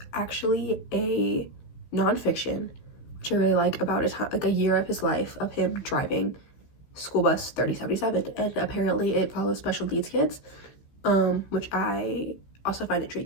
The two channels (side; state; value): right; late; 15 ms